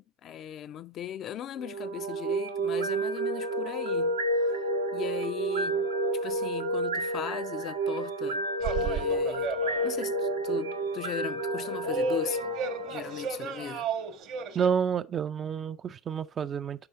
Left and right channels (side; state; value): both; normal; correlation 0.14